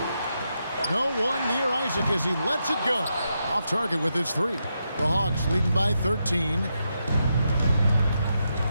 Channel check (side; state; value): both; inverted; correlation -0.84